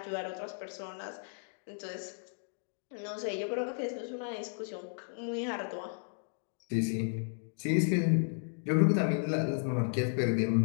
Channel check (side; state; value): right; silent; 55 dB below the other